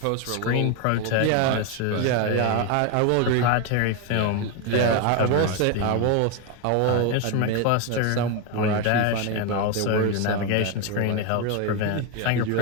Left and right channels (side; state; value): both; different; correlation 0.02